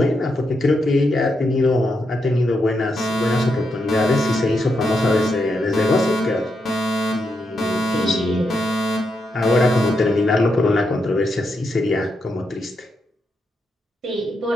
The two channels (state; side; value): normal; both; correlation 0.82